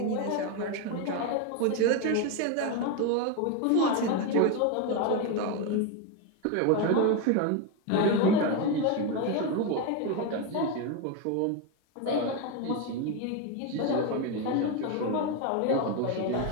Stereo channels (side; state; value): both; different; correlation 0.02